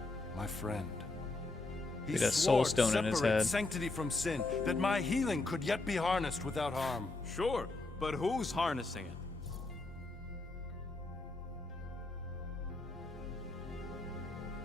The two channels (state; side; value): quieter; right; 3.2 dB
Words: my friend. He With a soul swore to stone in his separate head. sanctity from sin, that my healing could yet be harnessed without harm. Sure, but who's harnessing it?